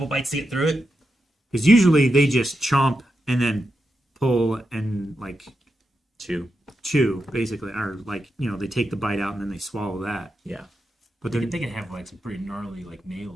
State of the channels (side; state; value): both; normal; correlation 0.87